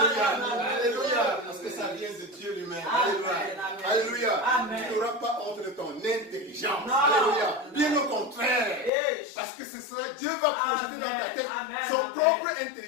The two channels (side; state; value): right; drops out; at 8.9 s